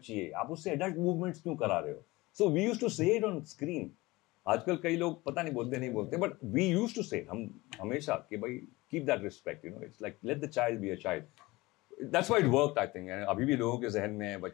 है, आप उससे एडल्ट मूवमेंट्स क्यों करा रहे हो। सो वी यूज्ड टू से इट ऑन स्क्रीन। आजकल कई लोग पता नहीं बोलते नहीं बोलते, बट वी यूज्ड टू से, हम हमेशा कि भाई keep that respect, you know, it's like let the child be a child. That's why it worked I think. अभी भी लोगों के जहन में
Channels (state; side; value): quieter; right; 21.1 dB